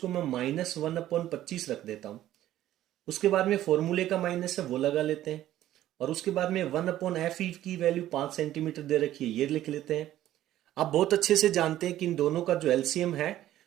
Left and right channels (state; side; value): quieter; left; 13.3 dB